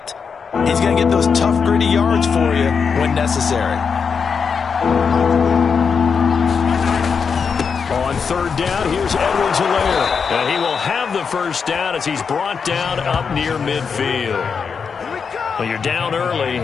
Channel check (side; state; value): right; quieter; 5.9 dB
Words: he's going to get those tough, gritty yards for you when necessary. On 3rd down, here's Edwards-Helaire. And he will have the 1st down as he's brought down up near midfield. Well, you're down early.